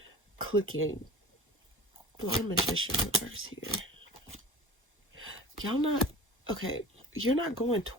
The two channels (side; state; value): both; normal; correlation 0.37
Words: clicking. Why Magician reverse here? Y'all not, okay, you're not going